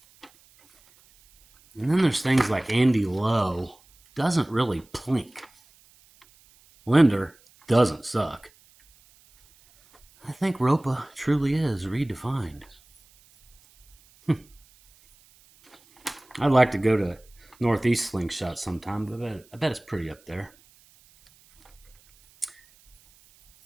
And then there's things like Andy Lowe doesn't really plink. Linder doesn't suck. I think Ropa truly is redefined. I'd like to go to Northeast Slingshot sometime, but I bet it's pretty up there.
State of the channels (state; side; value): noise; right; hiss, 30 dB below the sound